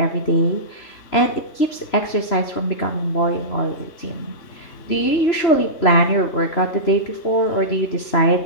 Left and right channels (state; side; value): late; right; 3.0 ms